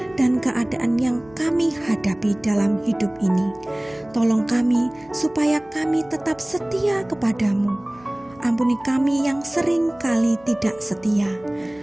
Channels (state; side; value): noise; left; hum, 26 dB below the sound